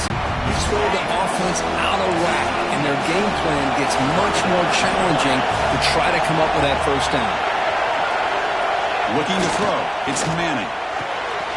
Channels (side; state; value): both; identical; correlation 1.00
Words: you throw the offense out of whack, and their game plan gets much more challenging to try to come up with that first down. Looking to throw. It's Manning.